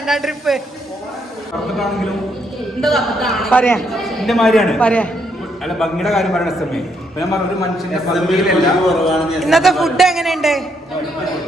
ട്രിപ്പ് പറയാ പറയാ. ഇന്നത്തെ ഫുഡ് എങ്ങനെയുണ്ട്?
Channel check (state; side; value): normal; both; correlation 0.74